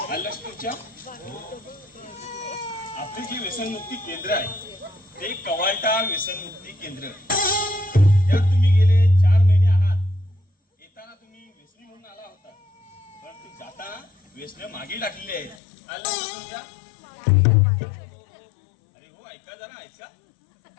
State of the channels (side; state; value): right; drops out; at 15.6 s